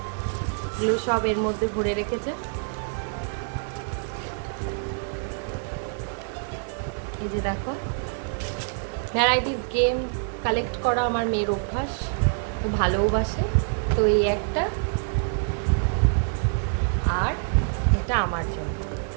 এগুলো সব এর মধ্যে ভরে রেখেছে। এই যে দেখো, ভ্যারাইটিস গেম কালেক্ট করা আমার মেয়ের অভ্যাস, ও ভালোবাসে। তো এই একটা, আর এটা আমার জন্য।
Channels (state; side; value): silent; left; 61 dB below the other